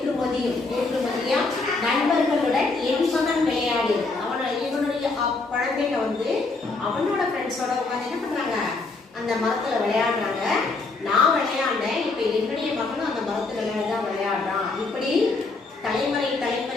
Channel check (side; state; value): right; quieter; 3.7 dB